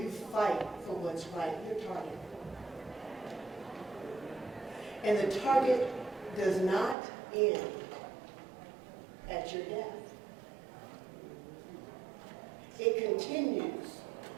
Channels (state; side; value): drops out; left; at 7.0 s